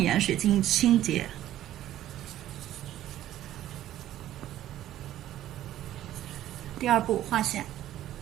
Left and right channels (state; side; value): quieter; left; 13.0 dB